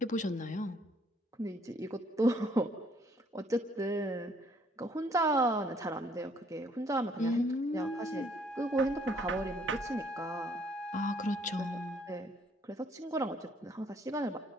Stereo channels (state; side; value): normal; both; correlation 0.64